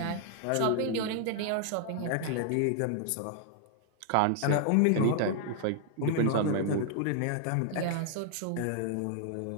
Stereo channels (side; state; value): both; different; correlation 0.00